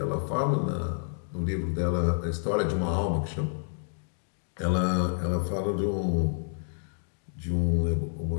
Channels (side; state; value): right; silent; digital silence